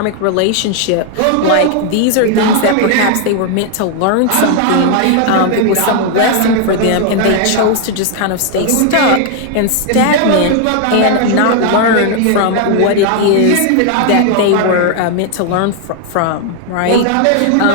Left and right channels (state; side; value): different; both; correlation 0.00